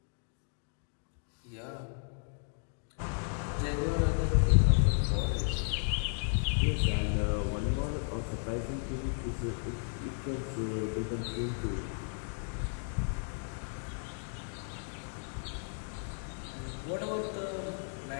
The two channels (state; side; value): silent; right; 55 dB below the other